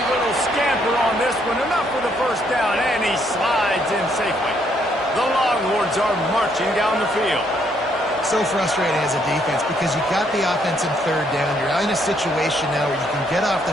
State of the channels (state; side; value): normal; both; correlation 0.71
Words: little scamper on this one. Enough for the first down, and he slides in safely. The Longhorns are marching down the field. So frustrating as a defense because you got the offense in third down. You're in a situation now where you can get off